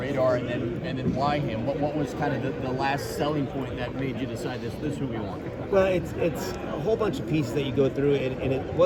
and then why him? What was kind of the last selling point that made you decide this is who we want? Well, it's a whole bunch of pieces that you go through, and it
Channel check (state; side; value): identical; both; correlation 1.00